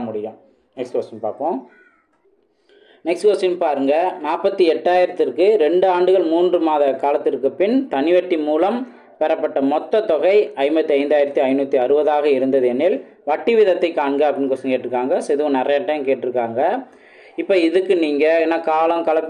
முடியும். நெக்ஸ்ட் கொஸ்டின் பார்ப்போம். நெக்ஸ்ட் கொஸ்டின் பாருங்கள். 48,000க்கு 2 ஆண்டுகள் 3 மாத காலத்திற்கு பின் தனிவட்டி மூலம் பெறப்பட்ட மொத்த தொகை 55,560 இருந்தது எனில் வட்டி விதத்தை காண்க அப்படின்னு கொஸ்டின் கேட்டிருக்காங்க. ஸோ இதுவும் நிறைய டைம் கேட்டிருக்காங்க. இப்போ இதுக்கு நீங்கள் என்ன காலம்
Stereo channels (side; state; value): both; identical; correlation 1.00